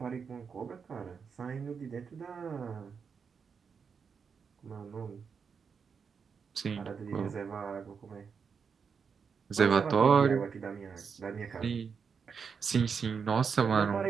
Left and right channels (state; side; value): quieter; left; 6.1 dB